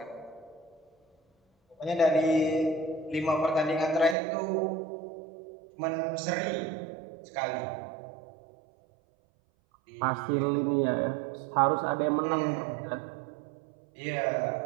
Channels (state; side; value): drops out; left; at 4.2 s